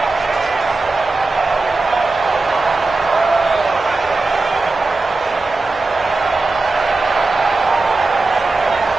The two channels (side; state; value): left; quieter; 3.4 dB